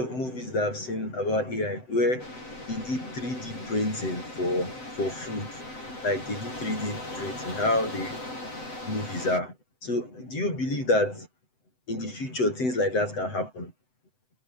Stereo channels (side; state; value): right; late; 7.9 ms